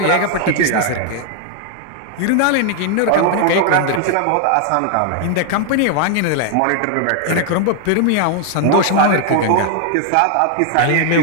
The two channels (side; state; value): both; different; correlation 0.00